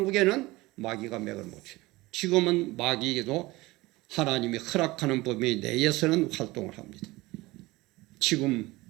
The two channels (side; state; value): left; quieter; 20.4 dB